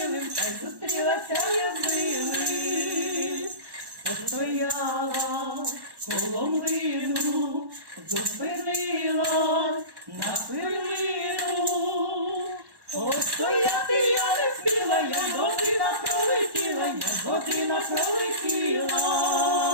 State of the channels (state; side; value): late; left; 1.1 ms